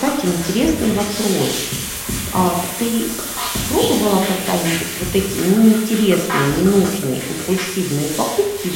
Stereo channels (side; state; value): both; identical; correlation 1.00